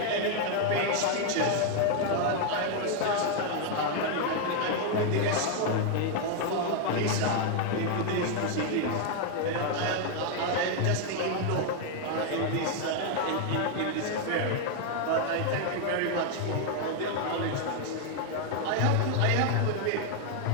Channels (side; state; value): both; different; correlation 0.01